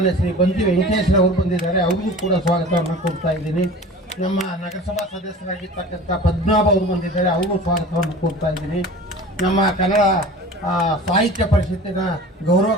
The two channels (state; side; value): normal; both; correlation 0.40